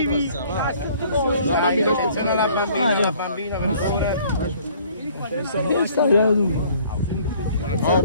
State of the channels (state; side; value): inverted; both; correlation -0.57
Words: La bambina, aspetta la bambina.